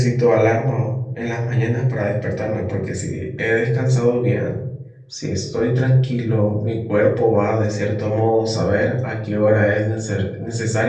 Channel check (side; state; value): both; identical; correlation 1.00